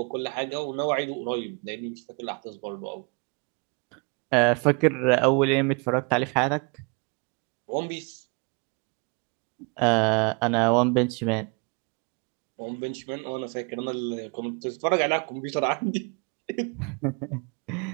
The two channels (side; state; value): left; quieter; 32.7 dB